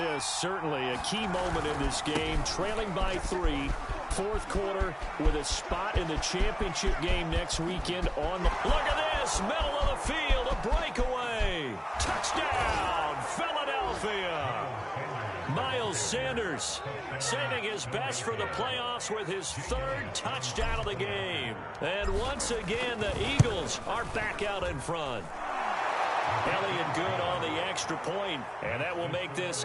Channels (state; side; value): identical; both; correlation 1.00